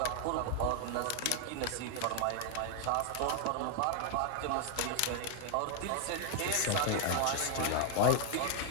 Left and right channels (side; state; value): both; different; correlation 0.00